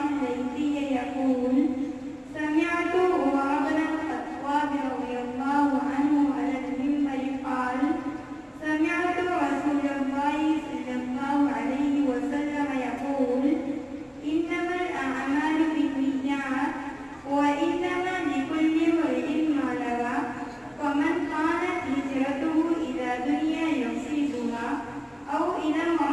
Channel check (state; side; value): identical; both; correlation 1.00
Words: الليثي يقول سمعت عمر بن الخطاب رضي الله عنه على المنبر قال سمعت رسول الله صلى الله عليه وسلم يقول إنما الأعمال بالنيات وإنما لكل امرئ ما نوى فمن كانت هجرته إلى دنيا يصيبها أو إلى